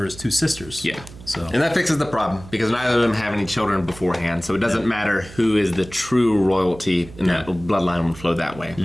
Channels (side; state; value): right; noise; hum, 17 dB below the sound